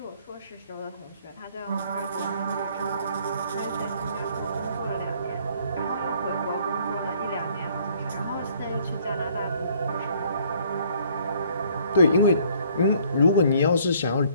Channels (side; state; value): both; inverted; correlation -0.60